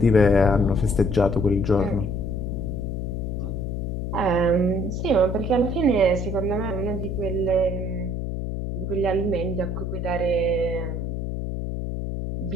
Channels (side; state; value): left; noise; hum, 3 dB below the sound